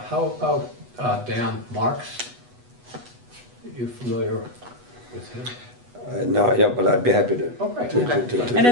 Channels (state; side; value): late; left; 8.2 ms